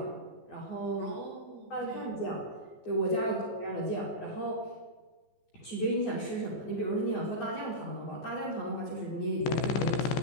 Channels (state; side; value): late; right; 14 ms